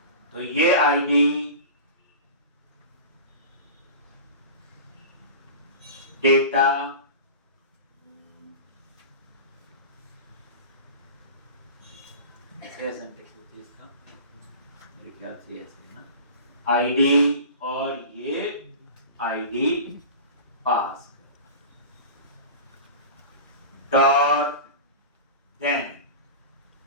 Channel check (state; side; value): inverted; both; correlation -0.34